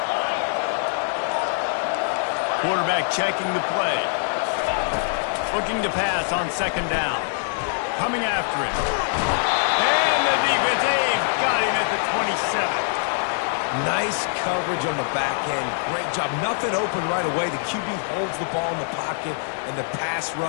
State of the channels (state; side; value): silent; right; digital silence